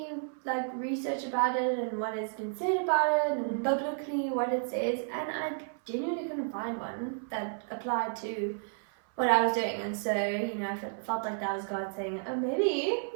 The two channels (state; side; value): silent; left; 56 dB below the other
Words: research about it and what has been said about it and biblically what it says, and I genuinely couldn't find one that applied to what I was doing. And so, I felt like that was God saying, oh, maybe